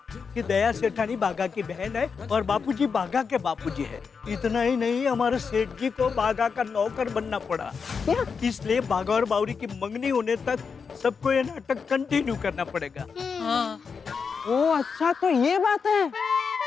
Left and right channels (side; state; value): right; quieter; 5.7 dB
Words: कि दया सेठानी बागा की बहन है और बापूजी बागा के बापूजी है। इतना ही नहीं, हमारे सेठ जी को बागा का नौकर बनना पड़ा। इसलिए बागा और बावरी की मंगनी होने तक सबको ये नाटक कंटिन्यू करना पड़ेगा। हाँ। ओ अच्छा, तो ये बात है।